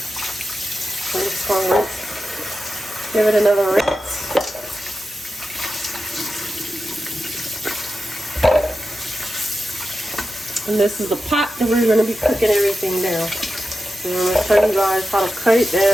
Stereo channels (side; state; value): both; normal; correlation 0.92